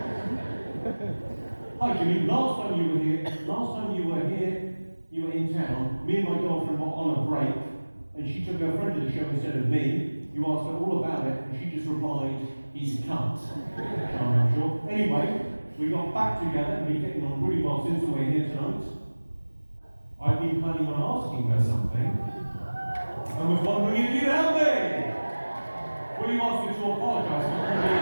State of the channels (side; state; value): both; inverted; correlation -1.00